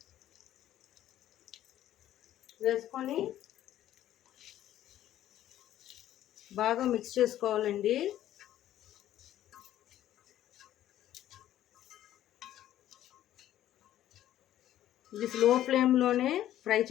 వేసుకొని బాగా మిక్స్ చేసుకోవాలండి. ఇది స్లో ఫ్లేమ్లోనే ఫ్రై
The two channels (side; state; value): right; quieter; 12.6 dB